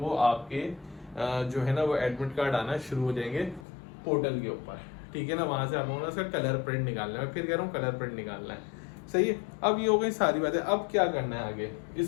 आपके जो है ना वो एडमिट कार्ड आना शुरू हो जाएंगे पोर्टल के ऊपर, ठीक है ना। वहां से आप लोगों ने उसका कलर प्रिंट निकालना है, फिर कह रहा हूँ कलर प्रिंट निकालना है, सही है। अब ये हो गई सारी बातें। अब क्या करना है आगे,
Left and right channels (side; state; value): right; drops out; at 3.7 s